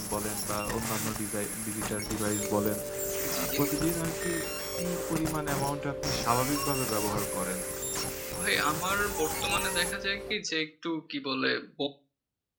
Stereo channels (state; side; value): identical; both; correlation 1.00